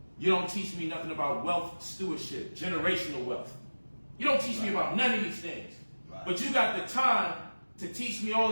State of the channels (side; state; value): both; inverted; correlation -1.00